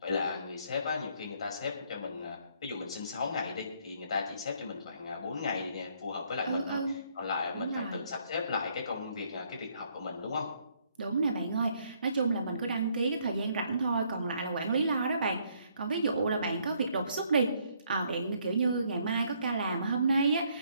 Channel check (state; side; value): inverted; both; correlation -0.68